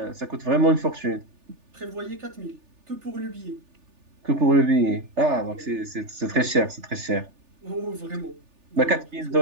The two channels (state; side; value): late; left; 3.4 ms